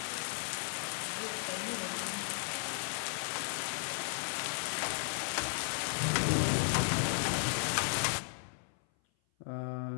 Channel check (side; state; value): right; silent; 54 dB below the other